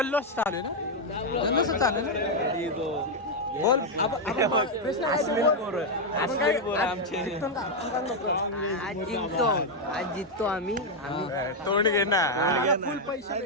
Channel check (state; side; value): normal; both; correlation 0.00